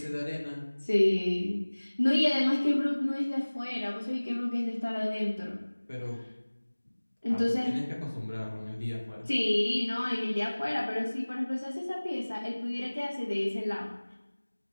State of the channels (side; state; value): both; inverted; correlation -1.00